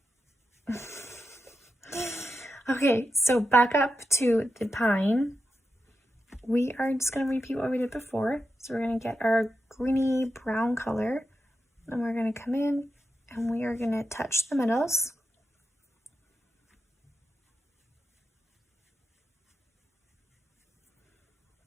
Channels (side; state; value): both; normal; correlation 0.89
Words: Okay, so back up to the pine. We are just going to repeat what we did before. So we're going to get our greeny brown color, and we're going to come in and we are going to touch the middles.